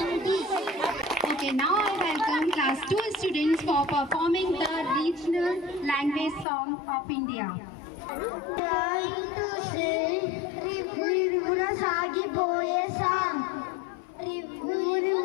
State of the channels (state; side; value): drops out; right; at 6.5 s